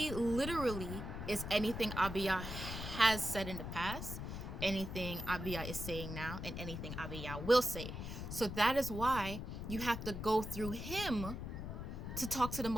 literally is anything Abiyah has said in the past, anything Abiyah is saying now, and anything Abiyah will say. So that is why you have to go through him to talk to the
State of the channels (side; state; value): left; noise; rumble, 6 dB below the sound